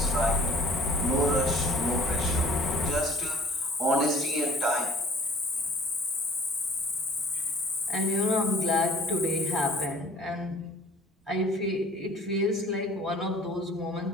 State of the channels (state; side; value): normal; both; correlation 0.51